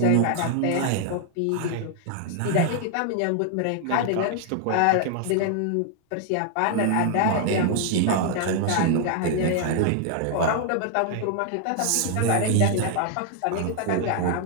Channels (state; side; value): different; both; correlation 0.00